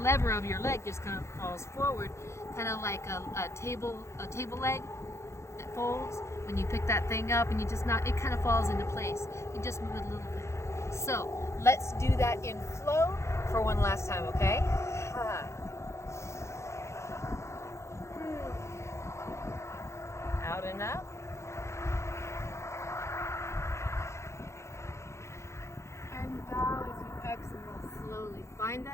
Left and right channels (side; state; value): right; late; 0.14 ms